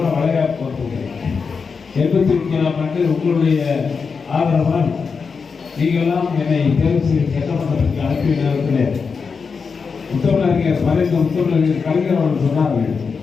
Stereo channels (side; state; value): right; quieter; 5.3 dB